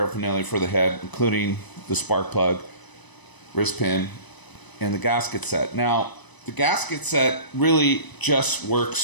for the head, including the spark plug, wrist pin, and the gasket set. Now, the gasket set really just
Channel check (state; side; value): late; right; 1.0 ms